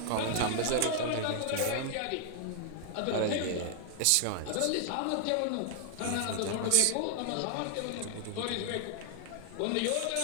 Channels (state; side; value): different; both; correlation 0.00